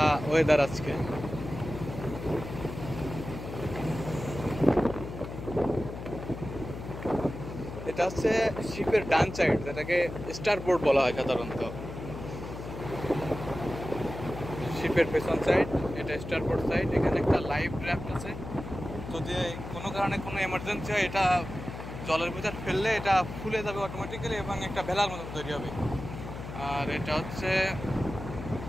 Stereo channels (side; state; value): left; noise; hum, 9 dB below the sound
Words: ওয়েদার আজকে। এটা হচ্ছে শিপের ডান সাইড, যেটাকে স্টারবোর্ড বলা হয় সাধারণত। শিপের পেছন সাইড এটা স্টারবোর্ড সাইড। এখানে একটা লাইফ রাফট আছে, যদি কোনো কারণে কোনো এমার্জেন্সি হয় এটা জলের ভিতর ফেললে এটা ফুলে যাবে অটোমেটিক্যালি এবং একটা ভেলার মতন তৈরি হবে। আর এটা হচ্ছে